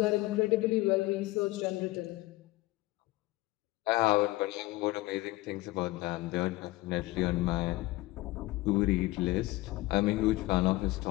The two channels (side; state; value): right; quieter; 19.5 dB